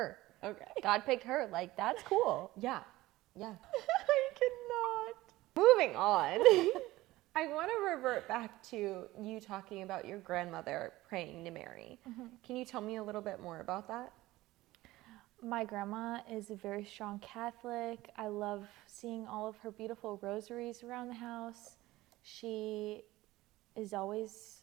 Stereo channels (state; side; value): quieter; left; 17.8 dB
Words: Okay. God picked her. Like, that's cool. Yeah. I cannot. Moving on. I want to revert back to you talking about your grandmother praying to Mary. Mm-hmm. Can you tell me a little bit more about that? My grandma is a very strong Catholic. I love seeing all of her beautiful rosaries around the house. She is always